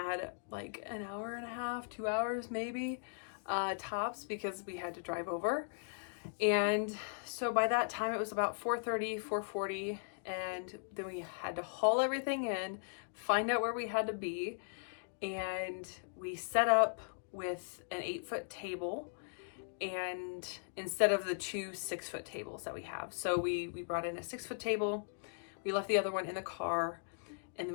like an hour and a half, 2 hours maybe, tops, because we had to drive over. And so by that time it was about 4:30, 4:40, and then we had to haul everything in, find out where we had to be, and we set up with an 8-foot table, and instead of the 2 6-foot tables that we have. So we brought in a 6-foot table, we left the other one in the car, and then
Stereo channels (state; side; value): silent; right; digital silence